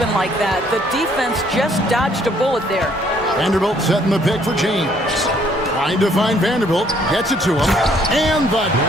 like that. The defense just dodged a bullet there. Vanderbilt setting the pick for James. Trying to find Vanderbilt. Gets it to him. And the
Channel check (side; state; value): both; normal; correlation 0.64